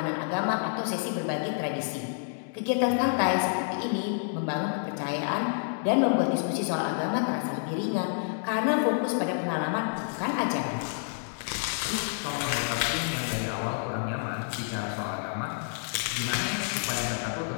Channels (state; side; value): silent; right; digital silence